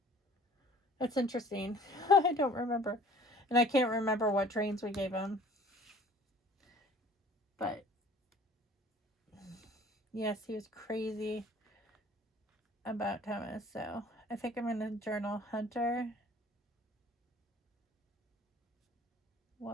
That's interesting. I don't remember. And I can't remember what trains we gave him. But yes, he was crazy about Thomas. So I think I'm going to journal Hunter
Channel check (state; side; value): normal; both; correlation 0.50